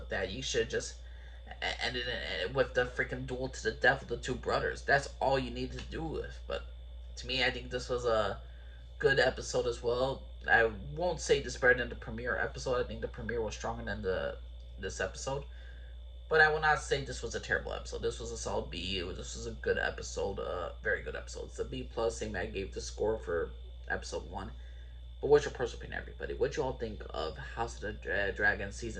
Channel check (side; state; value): both; identical; correlation 1.00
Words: that? You should just ended it with the freaking duel to the death of the two brothers. That's all you needed to do with. But to me, I think this was a good episode as well. I won't say this better than the premiere episode. I think the premiere was stronger than the this episode. But I will not say this was a terrible episode. This was a solid B. This was a good episode. Very good episode. It's a B plus. Same I gave the score for episode 1. But what's your personal opinion, everybody? What you all think of House of the Dragon